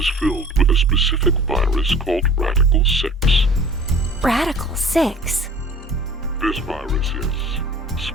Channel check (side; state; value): both; normal; correlation 0.46